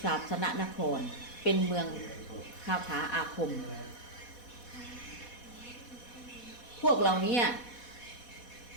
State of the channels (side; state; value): right; late; 4.1 ms